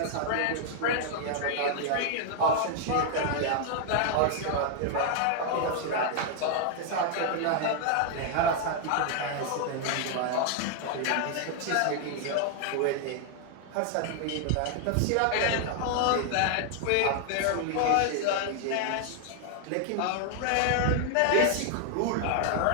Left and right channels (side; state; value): both; different; correlation 0.00